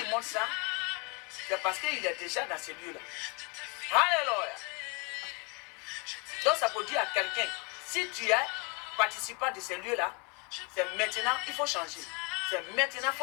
montre ça, c'est parce qu'il est déjà dans ces lieux-là. Alléluia. Donc ça peut dire à quelqu'un, si tu es participant de ces lieux-là, c'est maintenant il faut changer. C'est maintenant il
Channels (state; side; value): quieter; right; 31.6 dB